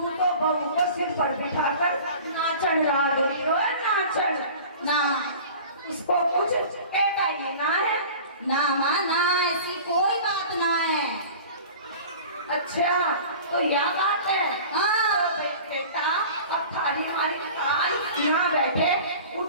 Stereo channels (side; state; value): both; inverted; correlation -0.41